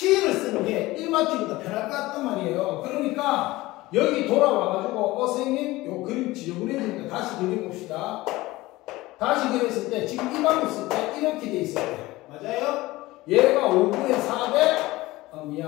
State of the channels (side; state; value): right; quieter; 19.1 dB